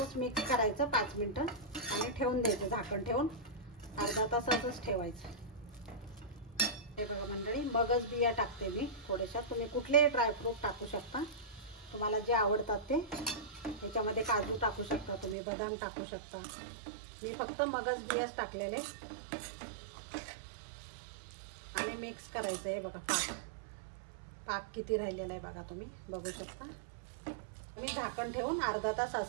मिक्स करायचं 5 मिनिटं आणि ठेवून द्यायचं, झाकण ठेवून अर्धा तासातच ठेवायचं. हे बघा मंडळी मगच बिया टाकते मी थोड्याशा. तुम्ही कुठलेही ड्रायफ्रूट टाकू शकता, तुम्हाला जे आवडतात ते. याच्यामध्ये काजू टाकू शकता तुम्ही, बदाम टाकू शकता. मी फक्त मगच बियाच टाकलेले. आणि मिक्स करायचं. हे बघा पाक किती राहिलेला आहे बघा, तुम्ही बघू शकता. मी झाकण ठेवून अर्धा तास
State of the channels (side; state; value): left; drops out; at 15.4 s